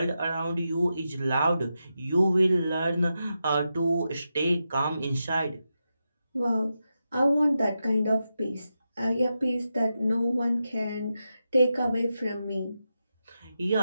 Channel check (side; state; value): both; inverted; correlation -0.88